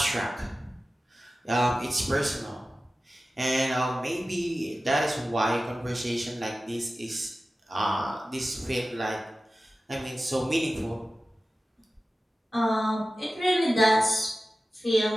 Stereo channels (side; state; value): both; normal; correlation 0.95